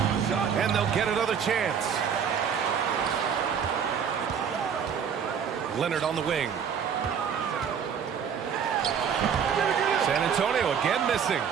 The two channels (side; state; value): left; quieter; 7.4 dB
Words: And they'll get another chance. Leonard on the wing. San Antonio again missing.